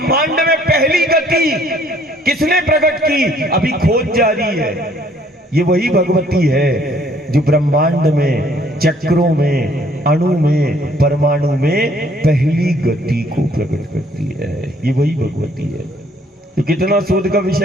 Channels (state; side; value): normal; both; correlation 0.62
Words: में पहली गति किसने प्रकट की? अभी खोज जारी है। ये वही भगवती है जो ब्रह्मांड में, चक्रों में, अणु में, परमाणु में पहली गति को प्रकट करती है। ये वही भगवती है। तो कितना शोध का